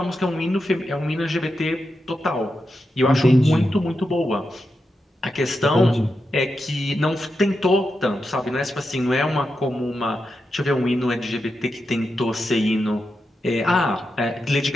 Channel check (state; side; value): normal; both; correlation 0.88